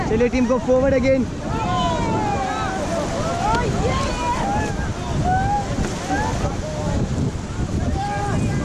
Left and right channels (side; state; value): both; identical; correlation 1.00